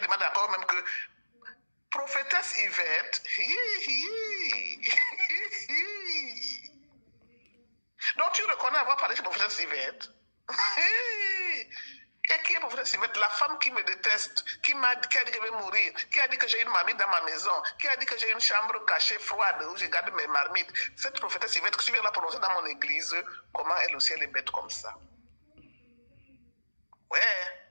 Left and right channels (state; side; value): inverted; both; correlation -1.00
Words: demande encore même que prophétesse Yvette, donc tu reconnais avoir parlé de prophétesse Yvette. Et qui est prophétesse Yvette? La femme qui me déteste, qui a dit que je vais mourir, qui a dit que j'ai une marmite dans ma maison, qui a dit que j'ai une chambre cachée froide où je garde mes marmites. Cette prophétesse Yvette que tu viens la prononcer dans mon église, comment elle aussi elle est bête comme ça? Ouais.